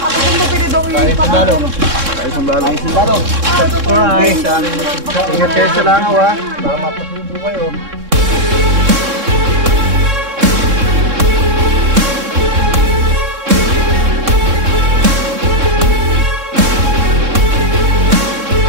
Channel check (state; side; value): late; left; 3.6 ms